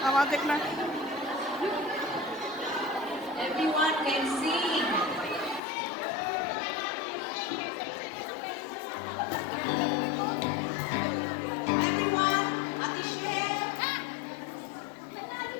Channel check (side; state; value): right; drops out; at 5.6 s